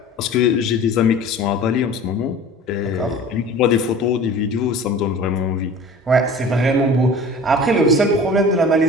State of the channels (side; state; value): both; normal; correlation 0.41